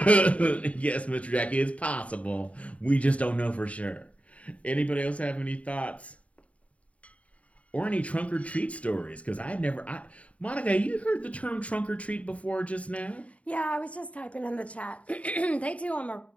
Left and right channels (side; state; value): right; late; 0.066 ms